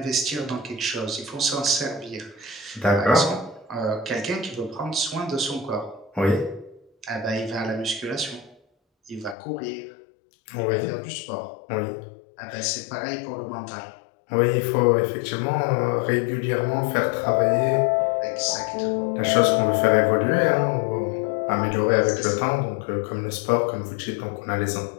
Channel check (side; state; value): right; drops out; at 9.3 s